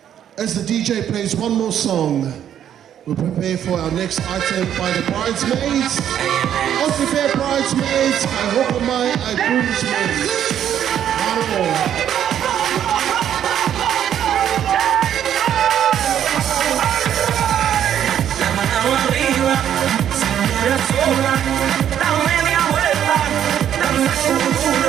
As the DJ plays one more song, We'll prepare for our next item by the bridesmaids. Aussie Fair bridesmaids, I hope my I groomsmaids. Hello. Da media vuelta, danza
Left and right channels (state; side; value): quieter; left; 10.0 dB